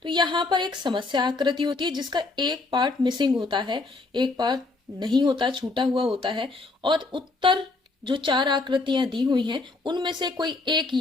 तो यहाँ पर एक समस्या आकृति होती है जिसका एक पार्ट मिसिंग होता है, एक पार्ट नहीं होता, छूटा हुआ होता है। और उत्तर जो चार आकृतियां दी हुई हैं उनमें से कोई एक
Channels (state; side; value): quieter; right; 3.5 dB